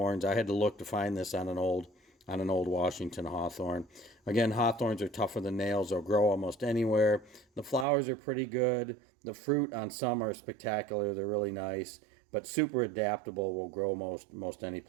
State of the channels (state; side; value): drops out; left; at 7.9 s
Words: I had to look to find this on an old Washington hawthorn. Again, hawthorns are tougher than nails. They'll grow almost anywhere. The flowers are pretty good. The fruit on some are spectacular. They're really nice, but super adaptable. Will grow most any